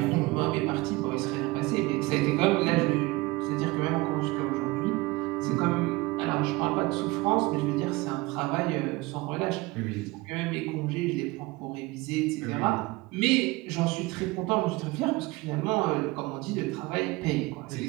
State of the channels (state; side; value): quieter; left; 22.1 dB